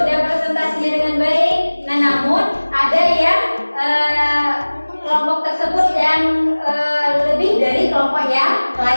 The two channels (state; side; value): inverted; both; correlation -1.00